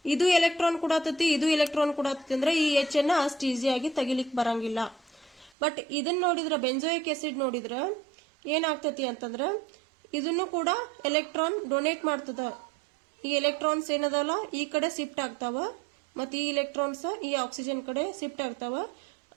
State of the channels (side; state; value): left; drops out; at 5.5 s